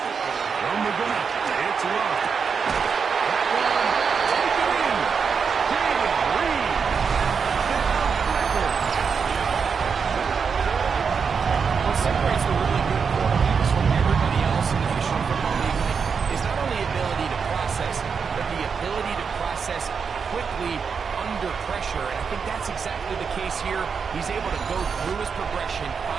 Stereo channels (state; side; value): quieter; left; 6.0 dB